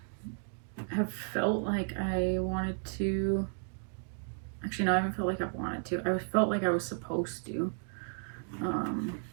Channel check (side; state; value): left; silent; 55 dB below the other